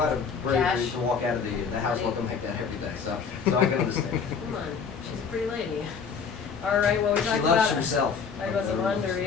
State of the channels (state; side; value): quieter; right; 6.0 dB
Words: bravery Cash. to walk out of the house Money. looking like that every day, so I can understand. Come on, she's a pretty lady. All right, well, we She talked loves about herself. talked about some